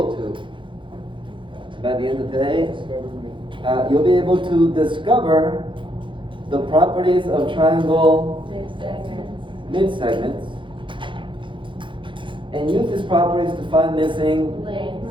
to, by the end of today, you'll be able to discover the properties of triangle mid-segments and use these properties to find missing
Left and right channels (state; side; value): late; left; 0.24 ms